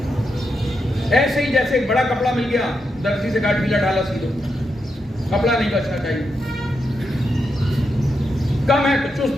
ایسے ہی جیسے ایک بڑا کپڑا مل گیا، درزی سے کاٹ ڈھیلا ڈالا سی دو، کپڑا نہیں بچنا چاہیے، کم ہے تو چست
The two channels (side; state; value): both; normal; correlation 0.84